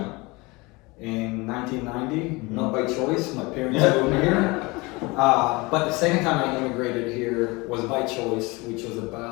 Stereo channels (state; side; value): quieter; right; 24.6 dB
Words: in 1990, not by choice. My parents moved me here. But the second time I immigrated here was by choice, which was